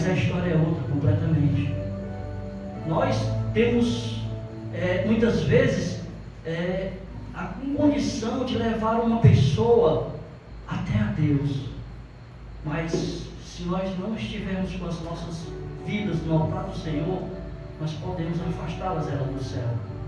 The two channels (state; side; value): identical; both; correlation 1.00